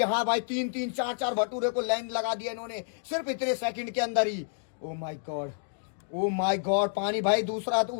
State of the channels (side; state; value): right; silent; digital silence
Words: भाई 3-3, 4-4 भटूरे को लाइन लगा दिया इन्होंने सिर्फ इतने सेकंड के अंदर ही। Oh my God, oh my God. पानी भाई दूसरा तो